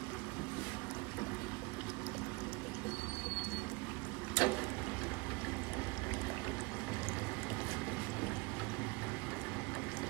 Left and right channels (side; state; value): left; quieter; 25.9 dB